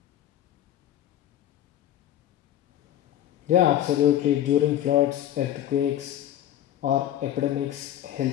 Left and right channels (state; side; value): quieter; right; 11.9 dB